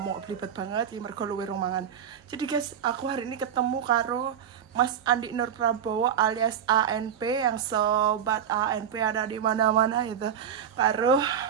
belibet banget ya, mergo luwe romangan. Jadi guys, aku hari ini ketemu karo Mas Andi Nur Prabowo alias ANP, yang sobat ANP ada di mana-mana itu. Karo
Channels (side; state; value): left; quieter; 8.7 dB